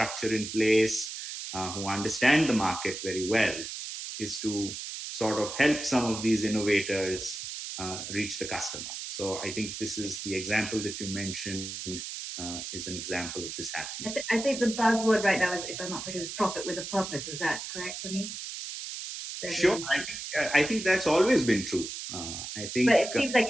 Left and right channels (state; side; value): noise; right; hiss, 7 dB below the sound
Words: in place, who understand the market very well, is to sort of help some of these innovators reach the customer. So I think this is the example that you mentioned is an example of this happening. I think the buzzword right now is, if I'm not correct, is profit with a purpose. Is that correct, Puneet? Sure, I think that's always been true. But it seems like